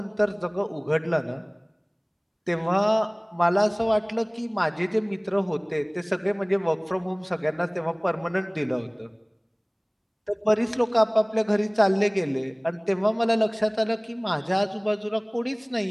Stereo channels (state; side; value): identical; both; correlation 1.00